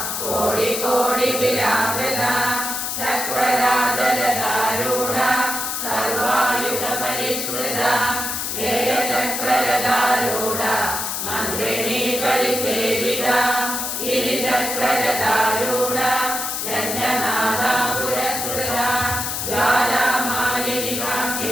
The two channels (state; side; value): noise; left; hiss, 3 dB below the sound